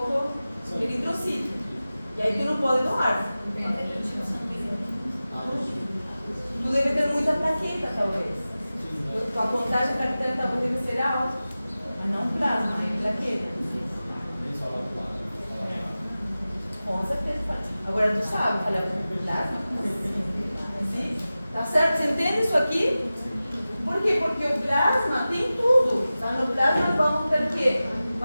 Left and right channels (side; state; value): both; inverted; correlation -0.95